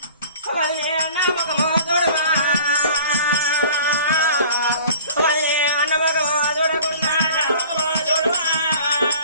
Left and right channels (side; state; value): both; inverted; correlation -0.47